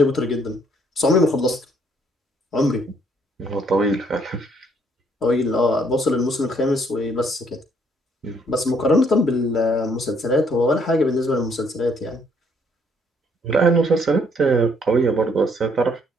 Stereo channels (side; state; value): both; normal; correlation 0.67